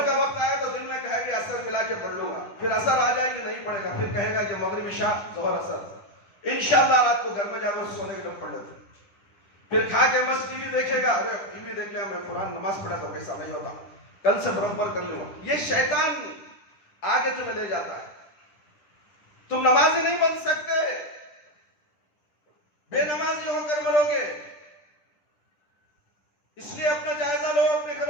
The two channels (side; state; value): right; late; 10 ms